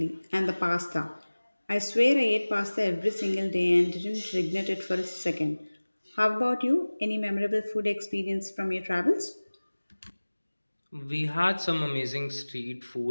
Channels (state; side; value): inverted; both; correlation -1.00